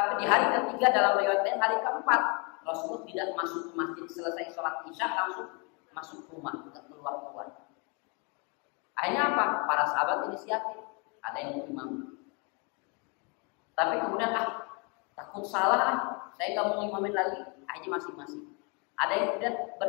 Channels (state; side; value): quieter; right; 32.8 dB